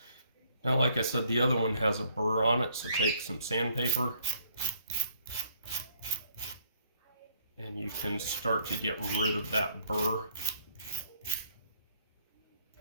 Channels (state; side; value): inverted; both; correlation -0.66